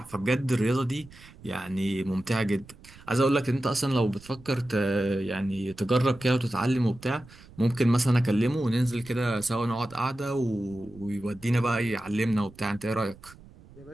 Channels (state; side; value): noise; right; rumble, 22 dB below the sound